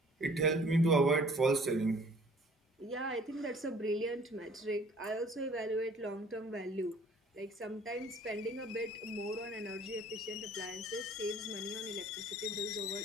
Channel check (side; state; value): both; normal; correlation 0.54